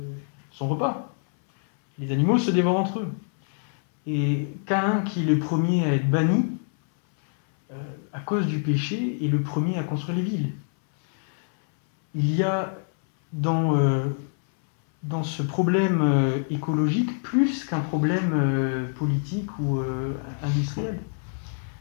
repas. Les animaux se dévorent entre eux. Et Caïn, qui est le premier à être banni, à cause du péché, est le premier à construire les villes. Il y a dans ce problème écologique plus qu'un problème politique ou industriel.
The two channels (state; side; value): silent; right; 61 dB below the other